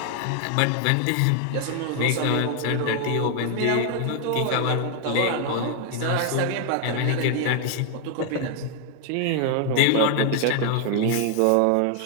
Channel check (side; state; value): both; different; correlation 0.00